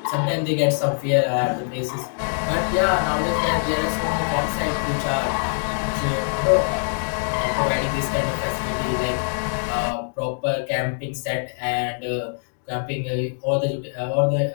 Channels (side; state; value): right; silent; digital silence